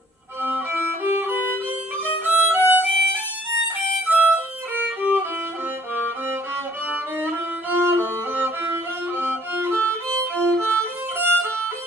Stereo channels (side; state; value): both; normal; correlation 0.60